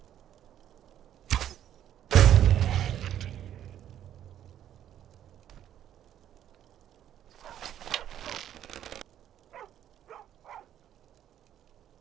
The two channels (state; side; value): quieter; left; 10.9 dB